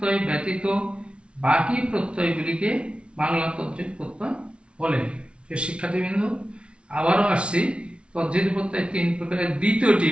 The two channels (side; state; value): left; late; 0.059 ms